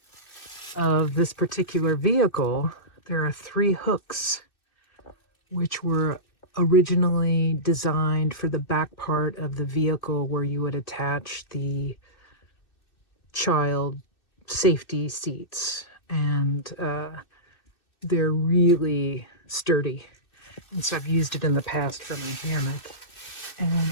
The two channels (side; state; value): right; late; 2.6 ms